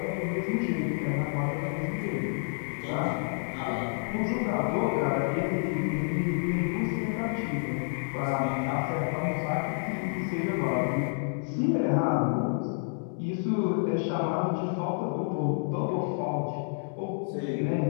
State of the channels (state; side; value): silent; right; digital silence